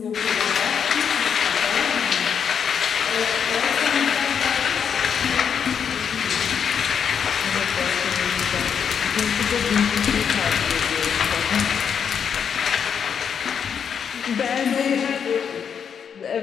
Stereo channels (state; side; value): quieter; right; 7.3 dB